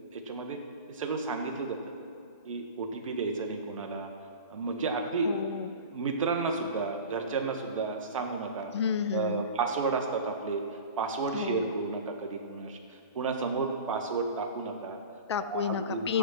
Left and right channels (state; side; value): inverted; both; correlation -0.34